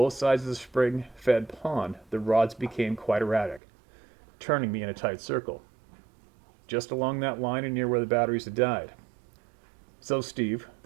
sides of the spring-fed pond, the rods became quite erratic, turning me in a tight circle. Just along that line and near where the batteries had died. So Steve,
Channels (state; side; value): drops out; left; at 3.6 s